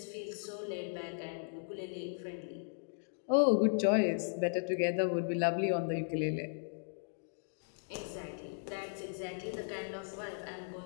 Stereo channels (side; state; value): right; silent; digital silence